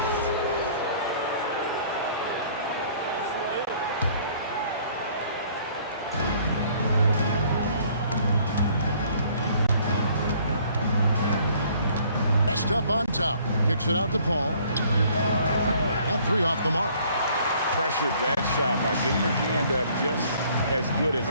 West up on top. Kicks it out to Paul. That three off the mark. Pressured that shot by getting a hand up just as good as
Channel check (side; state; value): both; inverted; correlation -0.59